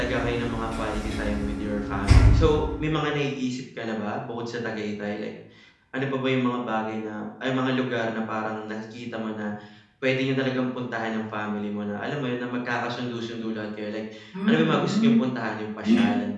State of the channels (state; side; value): identical; both; correlation 1.00